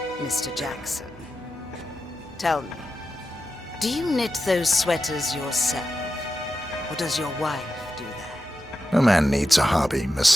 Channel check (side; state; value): both; normal; correlation 0.90